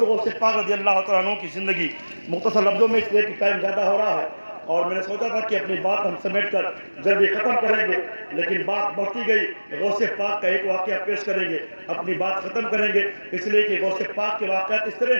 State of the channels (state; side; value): inverted; both; correlation -1.00